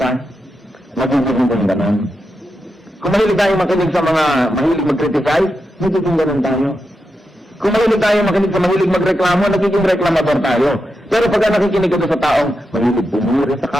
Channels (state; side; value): normal; both; correlation 0.87